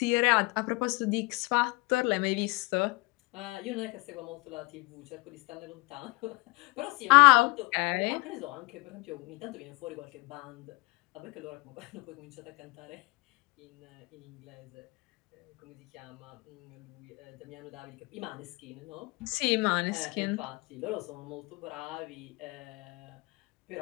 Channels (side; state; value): right; quieter; 26.0 dB